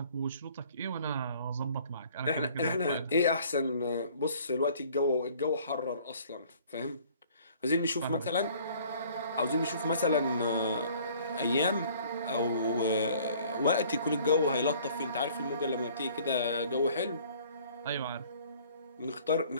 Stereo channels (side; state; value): both; inverted; correlation -0.55